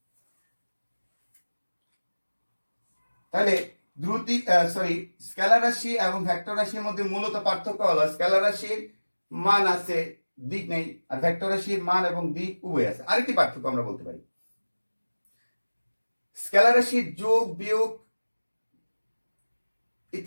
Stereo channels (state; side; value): inverted; both; correlation -1.00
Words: তাহলে স্কেলার রাশি এবং ভেক্টর রাশির মধ্যে মূলত পার্থক্য হলো স্কেলার রাশির মান আছে, দিক নেই, আর ভেক্টর রাশির মান এবং দিক উভয় আছে। আরেকটি পার্থক্য আমরা বলতে পারি, স্কেলার রাশির যোগ বিয়োগ